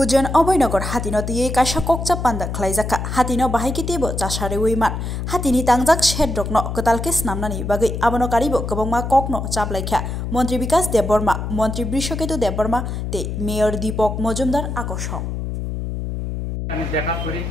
Abhaynagar हातिनो तिये काisa kokcha panda khlaijaka hatino bahaikitibo chasarewiman hatini tangjak shedrokno kotalke snamnani bagai abono karibo kwbangma kokno chaplaikha মন্ত্রী বিকাশ দেববর্মা মন্ত্রী বৃষকেতু দেববর্মা তে মেয়র দীপক মজুমদার আকর্ষণ। আমি দেখা করি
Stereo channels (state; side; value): noise; left; hum, 4 dB below the sound